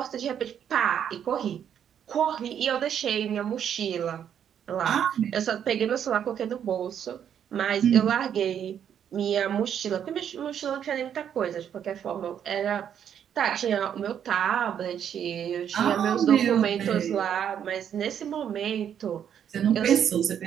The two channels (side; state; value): left; quieter; 8.9 dB